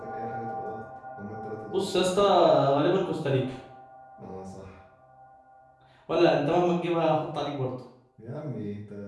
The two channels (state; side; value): identical; both; correlation 1.00